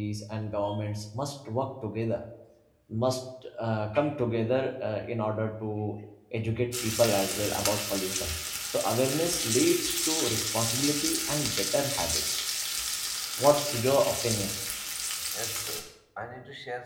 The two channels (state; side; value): identical; both; correlation 1.00